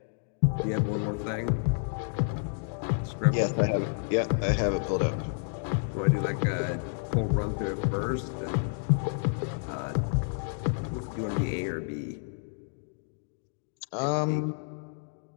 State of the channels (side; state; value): right; silent; digital silence